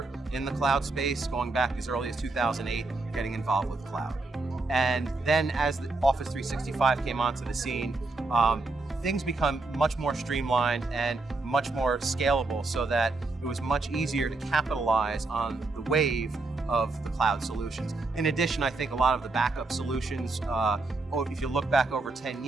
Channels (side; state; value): left; quieter; 3.4 dB